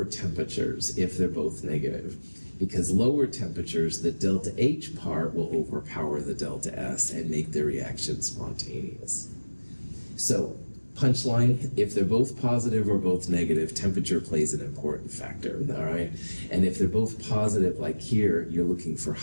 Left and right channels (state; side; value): inverted; both; correlation -1.00